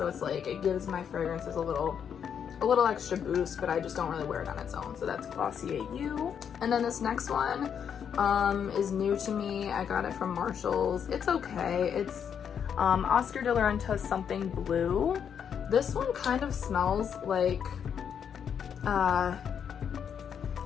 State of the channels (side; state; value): right; quieter; 7.8 dB